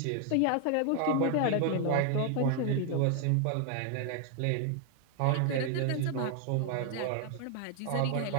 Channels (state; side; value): different; both; correlation 0.00